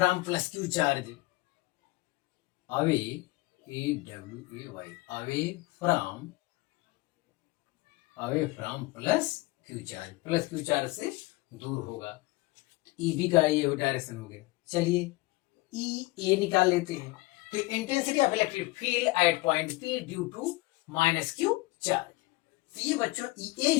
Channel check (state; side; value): quieter; right; 21.5 dB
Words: plus Q charge, away A W A Y, away from plus Q charge से दूर होगा। ई बी का ये डायरेक्शन हो गया। चलिए ई ए निकाल लेते हैं। तो intensity of electric field at point P due to minus Q charge, तो ये बच्चों ई ए